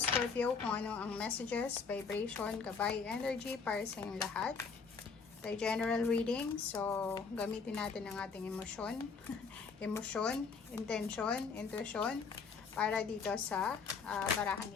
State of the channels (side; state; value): right; quieter; 5.2 dB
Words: Scorpio kung ano ang messages, vibration, gabay, energy para sa inyong lahat. Tayo general reading, so gamitin natin ang ating emosyon, emosyon, intention, intuition para dito sa barahan